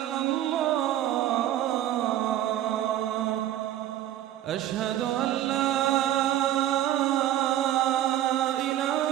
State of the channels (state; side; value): quieter; left; 12.8 dB